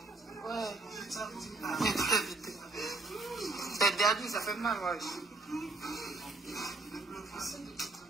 Ouais. interdit, ça fait mal, ouais.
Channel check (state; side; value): quieter; left; 3.3 dB